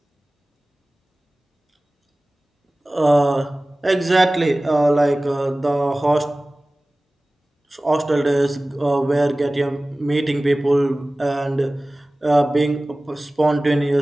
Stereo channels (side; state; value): both; normal; correlation 0.98